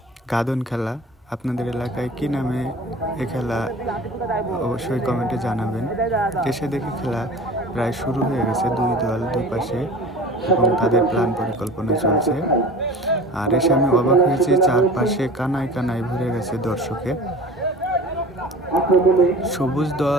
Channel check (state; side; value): normal; both; correlation 0.40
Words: গাদন খেলা। আপনাদের এলাকায় কি নামে এ খেলা অবশ্যই কমেন্টে জানাবেন। এসে দেখি খেলা প্রায় শুরু হয়ে গেছে, দুই দল দুপাশে এবং তাদের প্ল্যান পরিকল্পনা চলছে। আর এসে আমি অবাক হয়েছি, চারপাশে কানায় কানায় ভরে গেছে দর্শকে। সবুজ